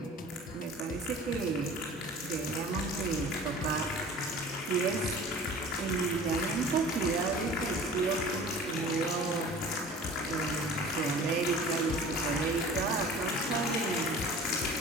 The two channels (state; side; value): normal; both; correlation 0.43